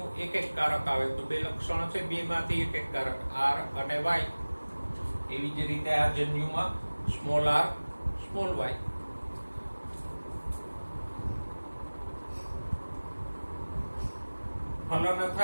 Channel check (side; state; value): both; inverted; correlation -1.00